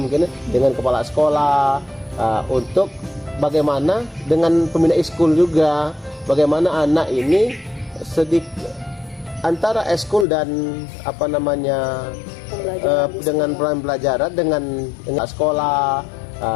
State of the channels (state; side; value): drops out; right; at 10.2 s